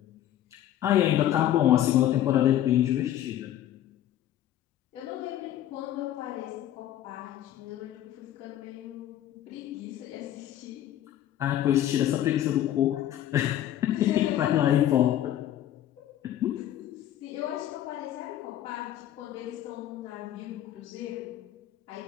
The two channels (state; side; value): quieter; right; 12.1 dB